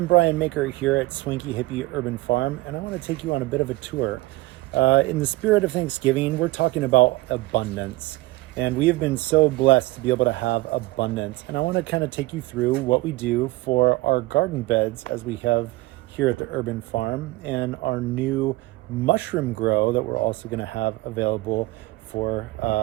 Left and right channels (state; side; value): quieter; left; 19.9 dB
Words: Brian Maker here at Swanky Hippie Urban Farm, and I want to take you on a bit of a tour. In the spirit of Thanksgiving, we're talking about abundance, and we have been so blessed to be able to have abundance. And I want to kind of take you through what we do for our garden beds as we have here at the Urban Farm, and our new mushroom grow that we're also going to have available for